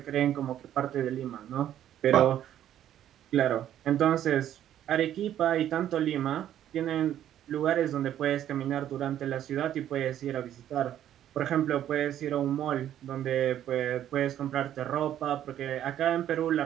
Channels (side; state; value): left; quieter; 11.2 dB